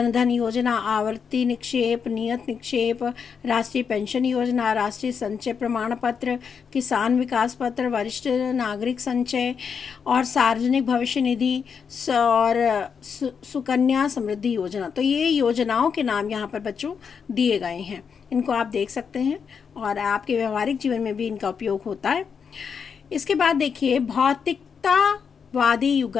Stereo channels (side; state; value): right; quieter; 6.5 dB